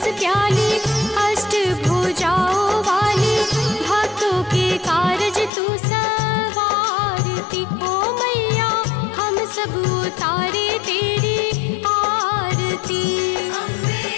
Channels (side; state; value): right; drops out; at 5.5 s